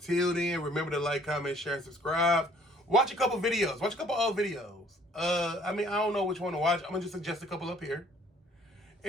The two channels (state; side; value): normal; both; correlation 0.59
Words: then, remember to like, comment, share, and subscribe. Watch a couple videos. Watch a couple old videos. I don't know which one to watch. I'm gonna just suggest a couple up here.